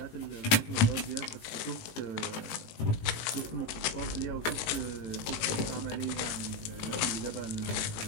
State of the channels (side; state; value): right; late; 18 ms